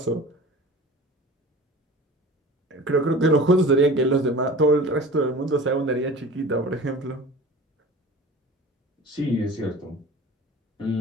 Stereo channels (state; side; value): normal; both; correlation 0.39